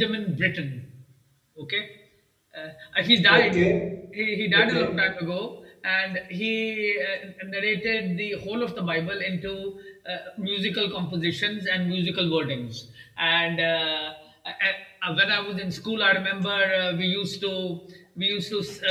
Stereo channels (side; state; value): both; identical; correlation 1.00